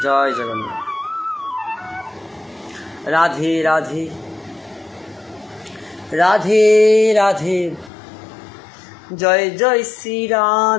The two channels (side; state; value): right; drops out; at 7.9 s